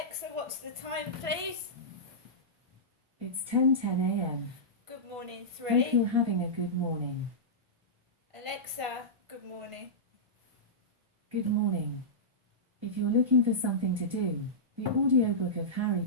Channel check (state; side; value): late; left; 1.4 ms